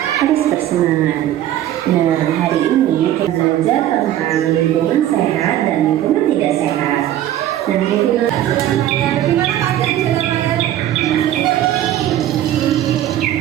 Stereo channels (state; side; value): quieter; left; 12.5 dB